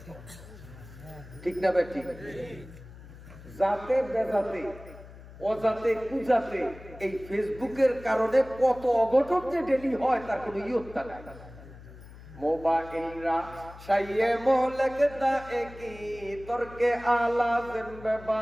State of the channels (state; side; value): noise; left; hum, 17 dB below the sound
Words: ঠিক না ভাই? ঠিক। যাতে বেজাতে, অজাতে কুজাতে এই ফেসবুকের কারণে কত অঘটন যে ডেলি হয় তার কোনো ইয়ত্তা নাই। মোবাইলরা শাইয়ে মোহলকদা একি তরকে আলা জিম্বে